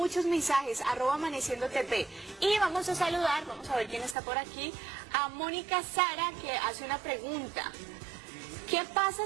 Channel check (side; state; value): left; drops out; at 4.2 s